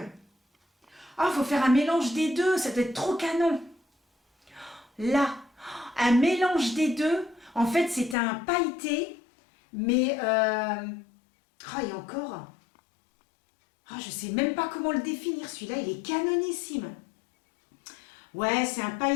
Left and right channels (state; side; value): drops out; right; at 8.2 s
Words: Oh, faut faire un mélange des deux, ça doit être trop canon. Là, un mélange des deux. En fait, c'est un pailleté, mais... Oh, et encore... Oh, je sais même pas comment le définir, celui-là, il est canonissime. Ouais, c'est un